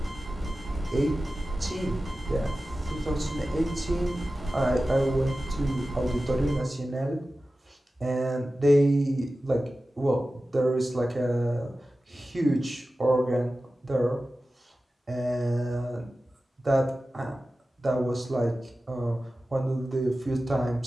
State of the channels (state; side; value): normal; both; correlation 0.95